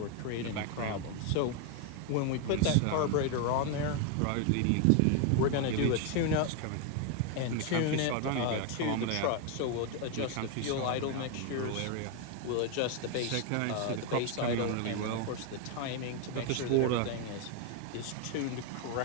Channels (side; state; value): both; different; correlation 0.01